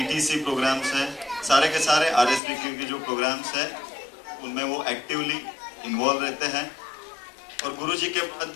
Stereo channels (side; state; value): right; drops out; at 2.4 s